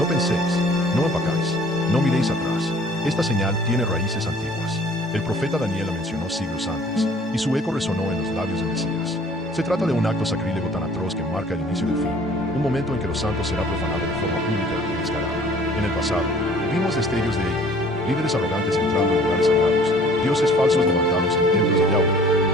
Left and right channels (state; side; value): normal; both; correlation 0.53